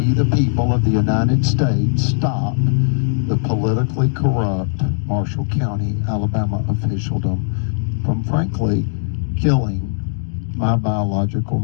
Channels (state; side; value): silent; right; digital silence